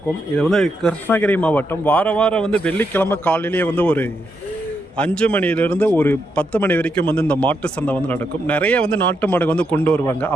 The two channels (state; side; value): normal; both; correlation 0.81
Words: இது வந்து கிருஷ்ணகிரி மாவட்டம். வாரம் வந்து வெள்ளிக்கிழமை காலையிலேயே வந்து ஒரு 5 மணிலேருந்து ஒரு 10 மணி வரைக்கும் வந்து இந்த மாட்டு சந்தை வந்து நடக்கும். நிறைய வந்து நாட்டு மாடு வந்து கொண்டு வருவாங்க.